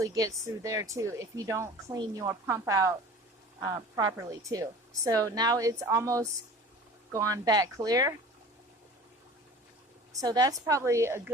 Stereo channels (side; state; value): both; normal; correlation 0.42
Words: gets through there too if you don't clean your pump out properly too. So now it's almost gone back clear. So that's probably a